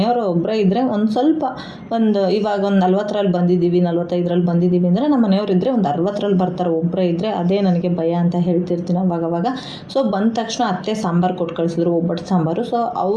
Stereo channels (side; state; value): both; identical; correlation 1.00